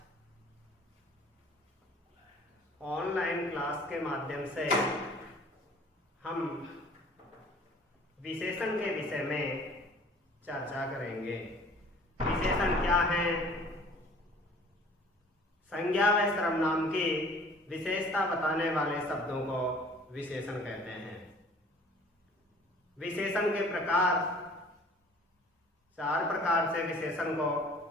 ऑनलाइन क्लास के माध्यम से हम विशेषण के विषय में चर्चा करेंगे। विशेषण क्या हैं? संज्ञा व सर्वनाम की विशेषता बताने वाले शब्दों को विशेषण कहते हैं। विशेषण के प्रकार, चार प्रकार से विशेषण को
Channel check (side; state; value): both; normal; correlation 0.51